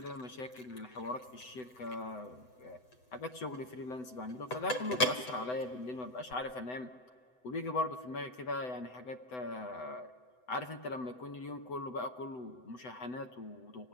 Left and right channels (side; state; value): right; late; 7.9 ms